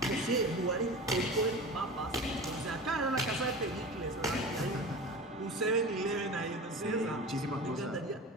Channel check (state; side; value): normal; both; correlation 0.32